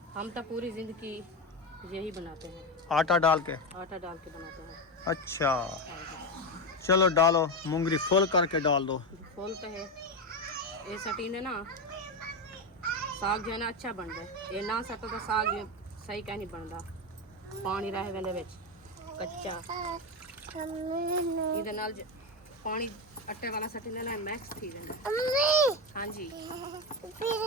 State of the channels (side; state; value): both; normal; correlation 0.14